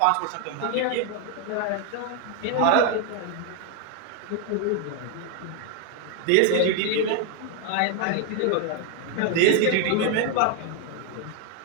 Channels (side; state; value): both; different; correlation 0.01